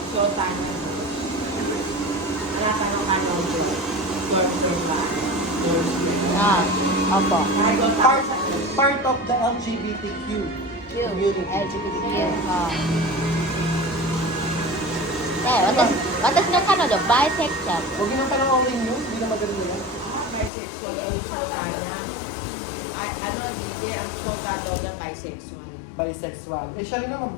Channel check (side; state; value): right; drops out; at 20.5 s